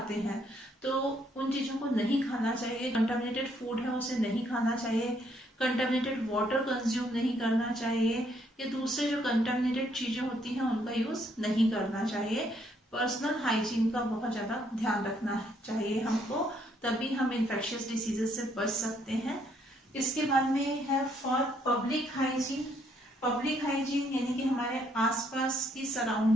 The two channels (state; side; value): normal; both; correlation 0.70